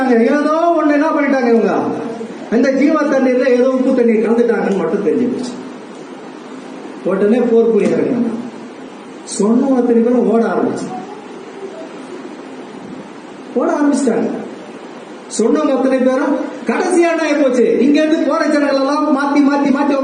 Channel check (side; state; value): both; identical; correlation 1.00